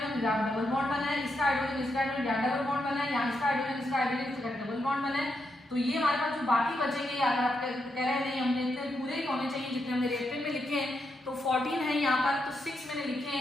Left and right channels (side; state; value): both; normal; correlation 0.82